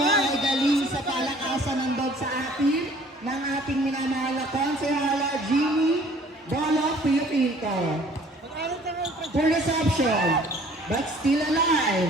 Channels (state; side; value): normal; both; correlation 0.54